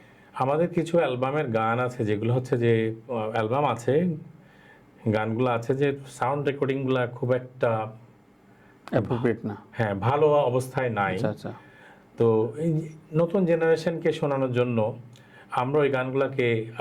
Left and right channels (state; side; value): identical; both; correlation 1.00